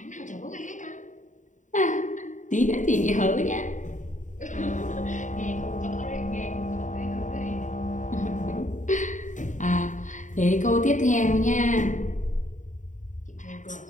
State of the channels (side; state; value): right; late; 0.36 ms